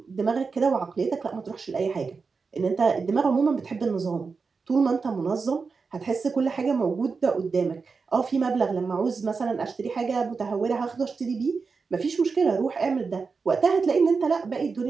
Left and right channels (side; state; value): left; quieter; 4.8 dB